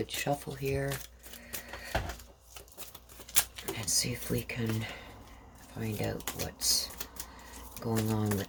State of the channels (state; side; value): identical; both; correlation 1.00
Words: shuffle here and see if we can find out what's going on